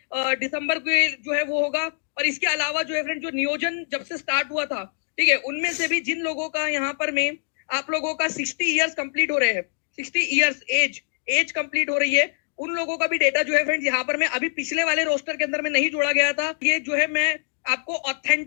दिसंबर को जो है वो होगा। और इसके अलावा जो है फ्रेंड जो नियोजन जब से स्टार्ट हुआ था, ठीक है, उनमें से भी जिन लोगों का यहाँ पर में आप लोगों का 60 इयर्स कंप्लीट हो रहे हैं, 60 इयर्स एज कंप्लीट हो रही है, उन लोगों का भी डेटा जो है फ्रेंड्स यहाँ पर में अभी पिछले वाले रोस्टर के अंदर में नहीं जोड़ा गया था। ये जो है मैं आपको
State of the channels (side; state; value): right; silent; digital silence